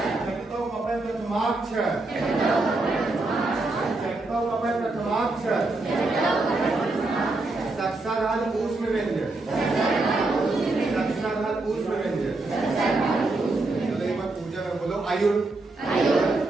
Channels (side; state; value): left; quieter; 3.1 dB